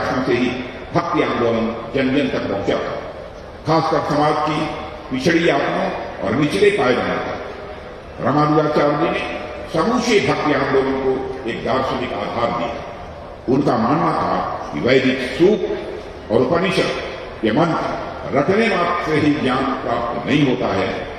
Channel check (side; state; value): both; identical; correlation 1.00